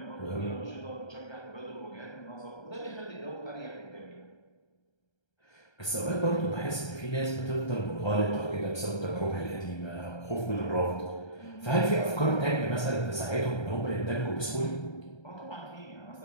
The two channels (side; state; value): right; late; 1.3 ms